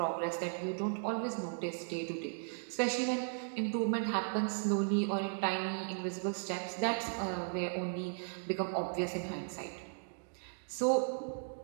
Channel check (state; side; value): silent; left; digital silence